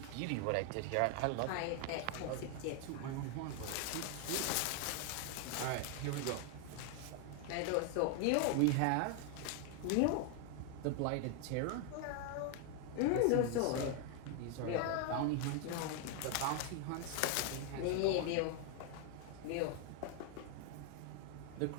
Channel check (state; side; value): different; both; correlation 0.01